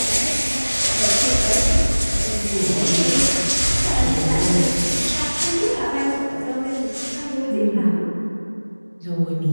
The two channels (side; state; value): both; inverted; correlation -1.00